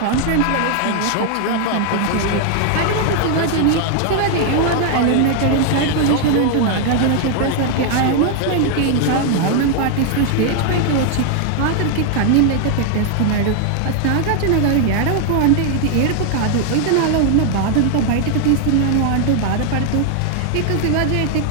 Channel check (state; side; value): different; both; correlation 0.00